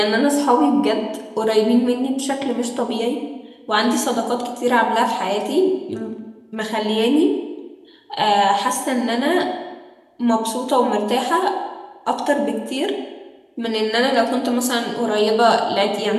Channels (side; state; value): both; identical; correlation 1.00